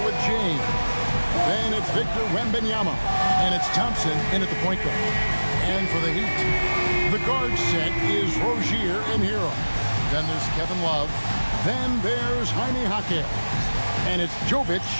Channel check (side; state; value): both; inverted; correlation -1.00